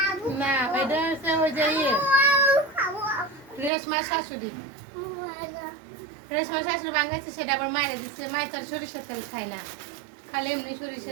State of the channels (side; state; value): left; drops out; at 3.7 s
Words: না, এটা হচ্ছে ওই যে রেশমার শাশুড়ি। রেশমার শাশুড়ি ভাঙ্গাচ্ছে, সেটা আবার মায়েরা দিচ্ছে। মায়ের তার সরিষার তেল খায় না, খালি এমনি